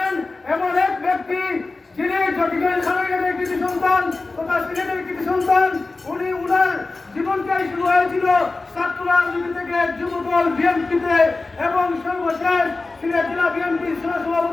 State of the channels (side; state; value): right; quieter; 3.5 dB